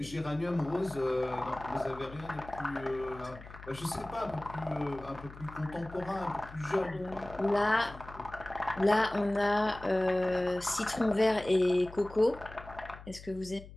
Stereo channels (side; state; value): left; noise; hum, 16 dB below the sound